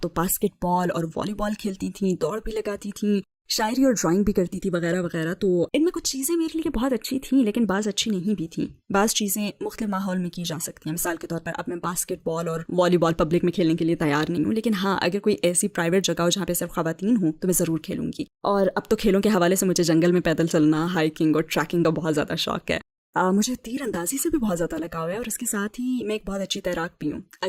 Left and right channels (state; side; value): identical; both; correlation 1.00